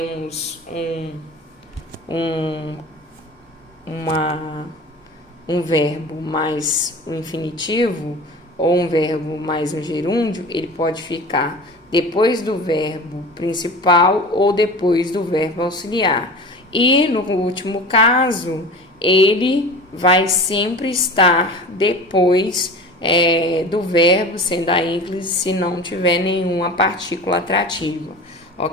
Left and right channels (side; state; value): both; normal; correlation 0.36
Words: um verbo mais um infinitivo, ou um verbo mais um gerúndio, ele pode ficar depois do verbo principal ou depois do verbo auxiliar. E no último caso, ele vai sempre estar depois do verbo, sendo a ênclise, se não tiver nenhuma partícula atrativa.